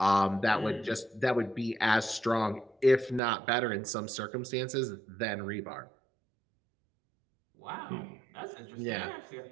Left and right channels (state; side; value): drops out; left; at 3.2 s